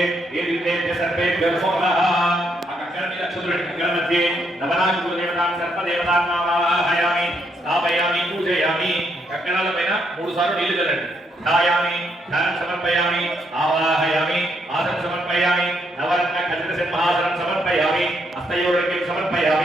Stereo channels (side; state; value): both; normal; correlation 0.75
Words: ఏ విద్యేభ్య సర్వేభ్యో నమః ఆ కంకణ మీద అక్షతులు కంకణ మధ్య నవనాగ గురుదేవతాం సర్పదేవతాం ఆవాహయామి స్థాపయామి పూజయామి కంకణాల పైన 3 సార్లు నీళ్లు చల్లండి ధాయామి ధ్యానం సమర్పయామి ఆవాహయామి ఆసనం సమర్పయామి నవరత్న ఖచ్చిత సింహాసనం సమర్పయామి హస్తయోర్ఘ్యం